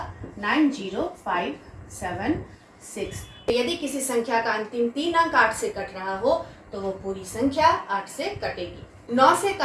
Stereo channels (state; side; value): identical; both; correlation 1.00